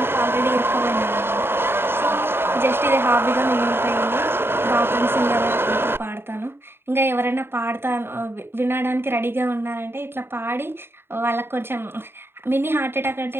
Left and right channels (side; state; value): left; late; 0.11 ms